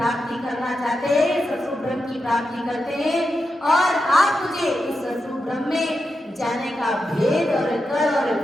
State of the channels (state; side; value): normal; both; correlation 0.88